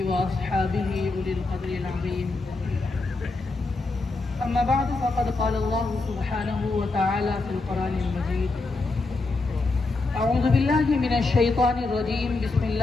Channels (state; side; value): quieter; right; 3.5 dB